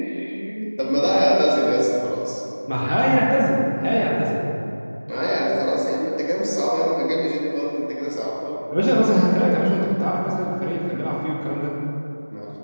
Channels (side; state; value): both; inverted; correlation -1.00